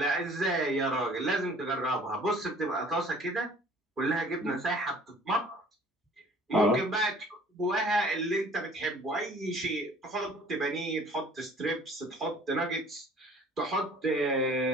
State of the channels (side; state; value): both; normal; correlation 0.52